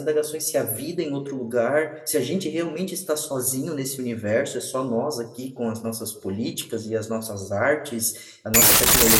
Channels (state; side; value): identical; both; correlation 1.00